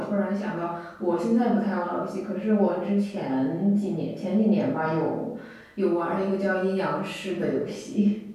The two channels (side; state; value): both; identical; correlation 1.00